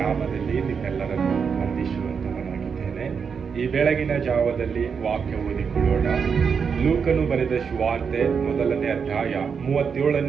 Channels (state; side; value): quieter; left; 6.2 dB